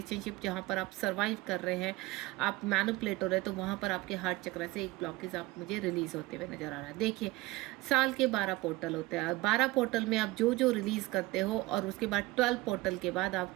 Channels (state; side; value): quieter; left; 19.8 dB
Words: जहाँ पर आप सर्वाइव कर रहे हैं, आप मैनिपुलेट हो रहे हैं, तो वहाँ पर आपके हार्ट चक्र से एक ब्लॉकेज आप मुझे रिलीज होते हुए नजर आ रहा है। देखिए, साल के 12 पोर्टल होते हैं, 12 पोर्टल में आप जो जो रिलीज करते हो, और उसके बाद 12 पोर्टल के बाद